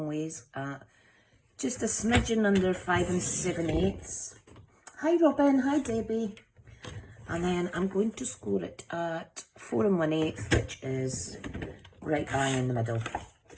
ways at just a smidgen under 5 7/8. Hi Robin, hi Debbie. And then I'm going to score it at 4 1/8, which is right bang in the middle.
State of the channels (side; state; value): both; identical; correlation 1.00